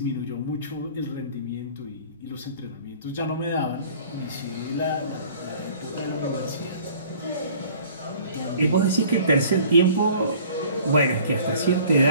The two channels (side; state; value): both; inverted; correlation -0.50